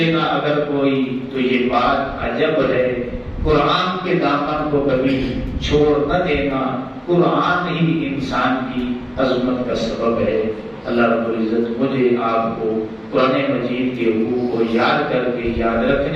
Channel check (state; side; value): identical; both; correlation 1.00